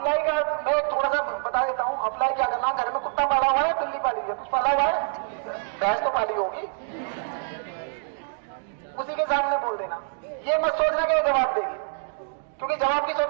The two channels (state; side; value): silent; left; digital silence